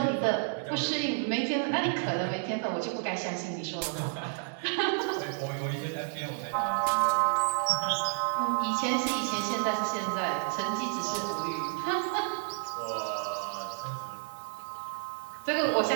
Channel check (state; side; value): silent; left; digital silence